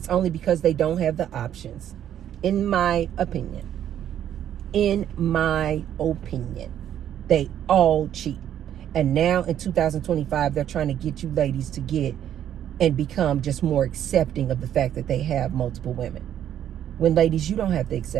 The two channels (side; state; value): left; quieter; 10.5 dB